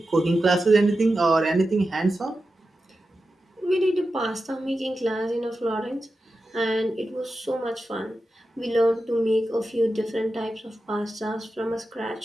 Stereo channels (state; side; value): normal; both; correlation 0.91